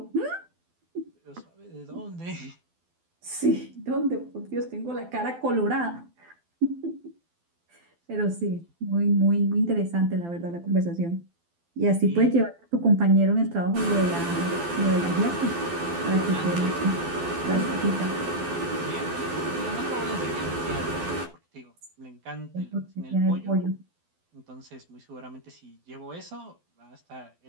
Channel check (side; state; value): left; late; 12 ms